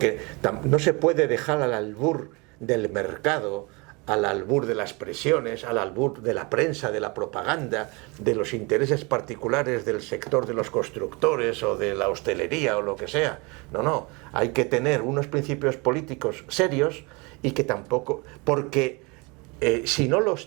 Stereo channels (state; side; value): quieter; left; 27.9 dB